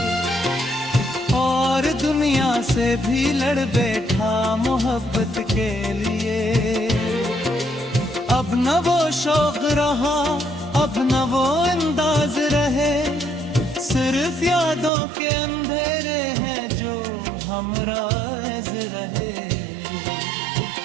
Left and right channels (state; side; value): drops out; left; at 14.9 s